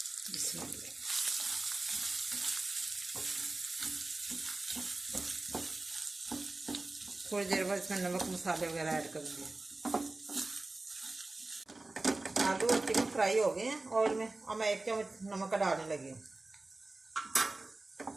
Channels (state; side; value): quieter; left; 3.1 dB